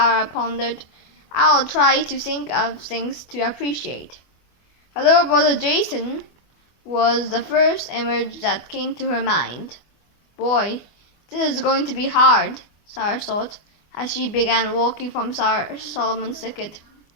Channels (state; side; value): late; right; 24 ms